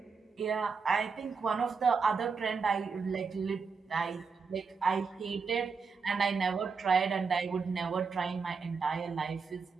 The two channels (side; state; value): left; quieter; 5.1 dB